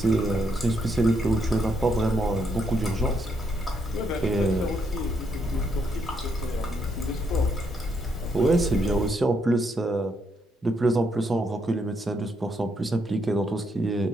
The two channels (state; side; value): normal; both; correlation 0.76